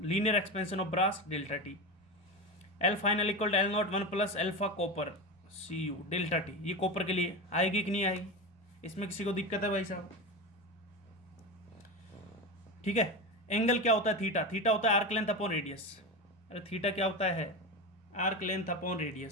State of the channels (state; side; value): normal; both; correlation 0.21